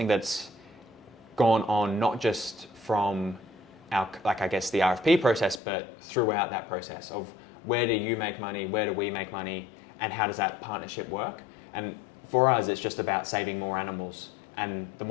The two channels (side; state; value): right; drops out; at 5.6 s